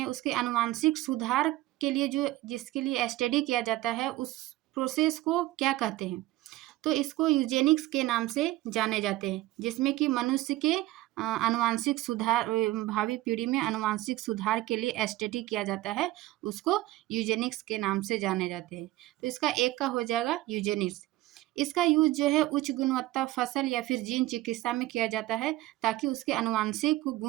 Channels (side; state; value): left; quieter; 17.0 dB